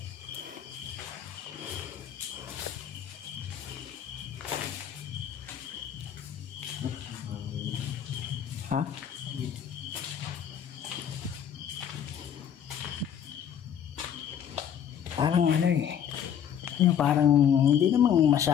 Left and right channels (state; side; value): quieter; right; 8.9 dB